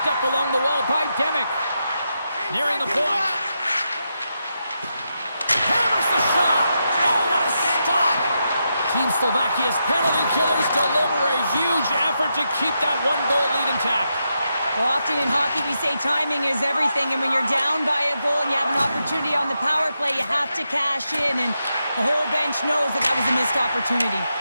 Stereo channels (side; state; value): both; inverted; correlation -0.85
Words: up along the wall by Demick. Nearing the point. Hammers the shot. Oh, what a stop. Team Slovakia's penalty killers deliver a huge effort to keep that one-goal lead intact. Well, often in hockey we say timing is everything, and when you're down by a goal and you have an opportunity on the power play, you have to cash in, and the whole bench knows that that was a missed opportunity.